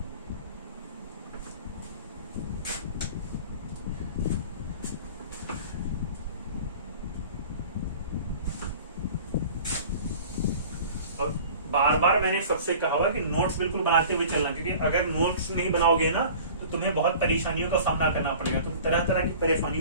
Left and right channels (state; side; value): inverted; both; correlation -0.43